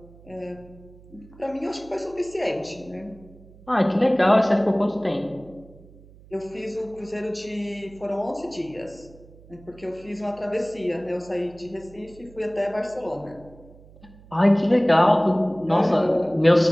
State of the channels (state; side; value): noise; right; hum, 23 dB below the sound